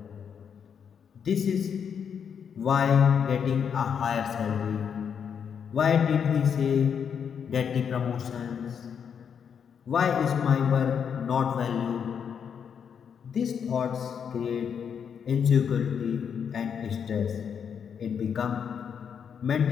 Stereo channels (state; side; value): quieter; right; 7.4 dB